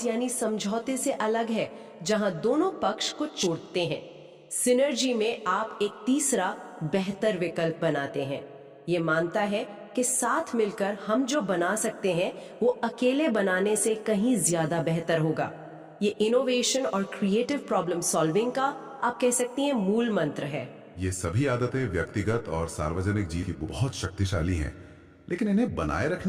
यानी समझौते से अलग है जहां दोनों पक्ष को छोड़ते हैं। सिनर्जी में आप एक तीसरा बेहतर विकल्प बनाते हैं। ये मानता है कि साथ मिलकर हम जो बना सकते हैं वो अकेले बनाने से कहीं ज्यादा बेहतर होगा। ये इनोवेशन और क्रिएटिव प्रॉब्लम सॉल्विंग का आप कह सकती हैं मूल मंत्र है। ये सभी आदतें व्यक्तिगत और सार्वजनिक जीवन की बहुत शक्तिशाली हैं, लेकिन इन्हें बनाए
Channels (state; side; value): identical; both; correlation 1.00